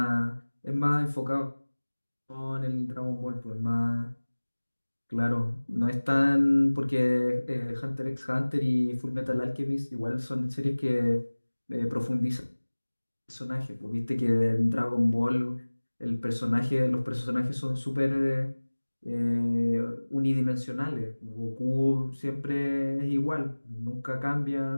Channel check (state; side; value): inverted; both; correlation -1.00